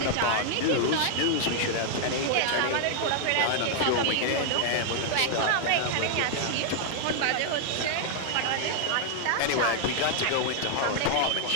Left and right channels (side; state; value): both; different; correlation 0.00